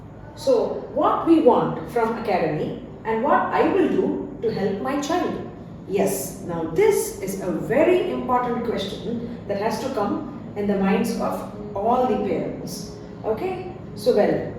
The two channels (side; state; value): both; identical; correlation 1.00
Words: So what we want from academy and what I will do to help my child. Yes, now this is a very important question that has to come in the minds of all the parents. Okay, so well,